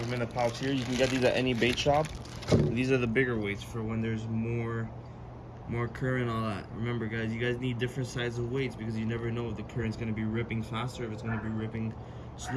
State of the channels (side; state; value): both; identical; correlation 1.00